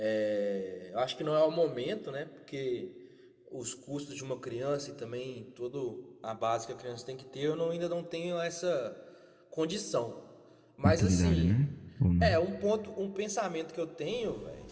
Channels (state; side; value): identical; both; correlation 1.00